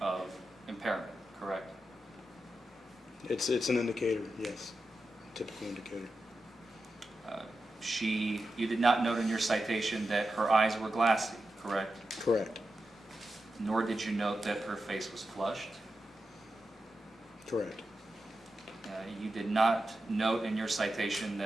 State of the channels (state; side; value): normal; both; correlation 0.90